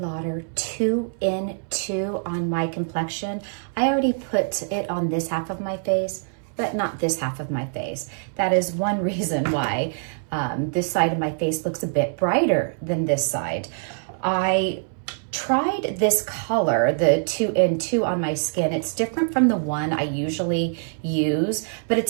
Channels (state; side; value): silent; left; 62 dB below the other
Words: 2 in 2 on my complexion. I already put it on this half of my face, but not this half of my face. That is one reason why this side of my face looks a bit brighter than this side. I tried this color, the 2 in 2 on my skin. It's different from the one I usually use, but